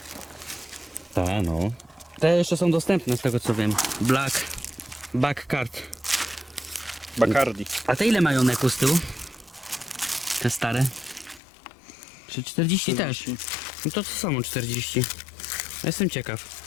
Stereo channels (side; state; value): right; drops out; at 11.4 s